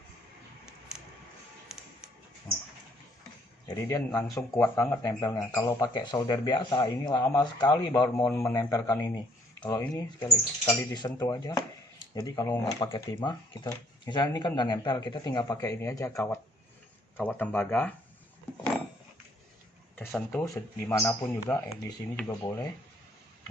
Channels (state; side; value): normal; both; correlation 0.64